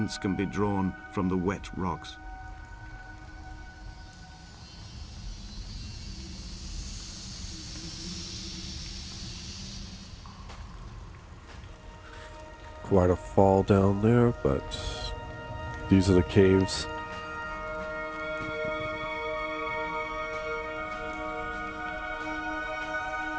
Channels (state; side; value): identical; both; correlation 1.00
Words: can be drawn from the wet rocks. Quite a fall down there, but these are the caves.